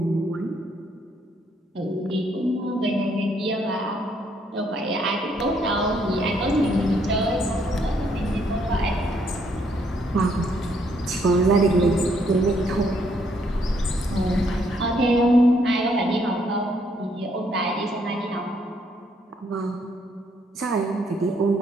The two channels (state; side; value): normal; both; correlation 0.70